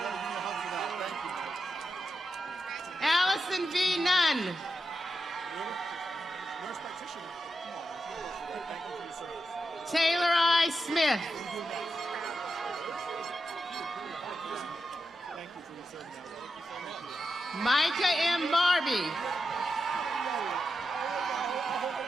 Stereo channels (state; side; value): normal; both; correlation 0.88